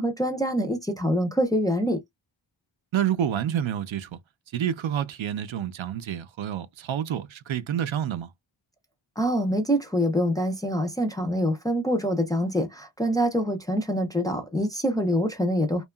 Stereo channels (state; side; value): normal; both; correlation 0.56